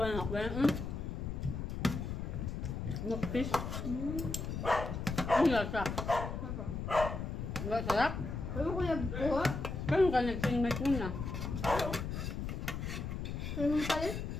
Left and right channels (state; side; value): noise; left; rumble, 4 dB below the sound